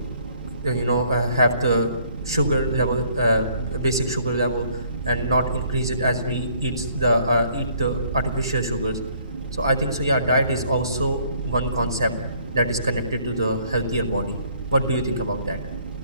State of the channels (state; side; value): inverted; both; correlation -0.62